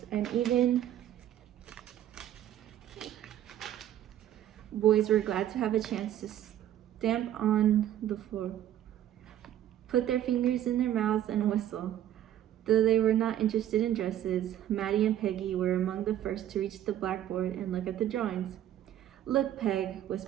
and even boys were glad to have a chance to stamp on the floor, put their fingers in their mouths, and whistle. Though they were not interested in dresses, Maddie and Peggy were among the first to reach the blackboard and look at the drawings. Look, Peg,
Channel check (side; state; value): left; quieter; 11.6 dB